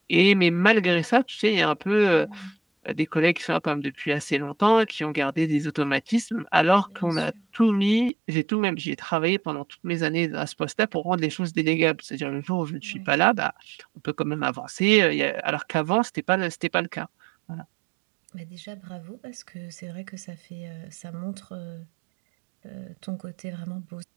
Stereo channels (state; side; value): drops out; left; at 8.1 s